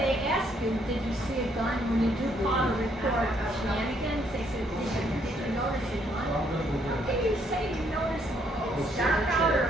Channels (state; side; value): normal; both; correlation 0.70